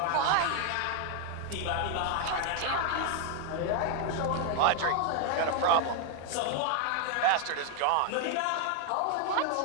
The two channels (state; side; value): different; both; correlation 0.00